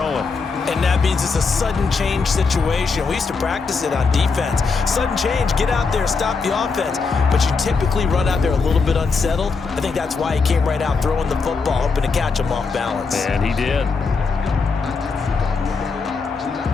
And that means it's a sudden change situation. We used to practice it on defense. Sudden change, get out there, stop the offense. But you typically run out there a little bit unsettled. I think that's why he came right out throwing the football, hoping to catch him off balance. And he did.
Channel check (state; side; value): quieter; right; 4.6 dB